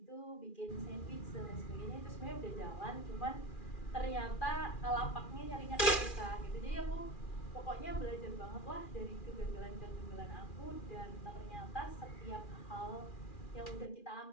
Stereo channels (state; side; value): late; right; 2.4 ms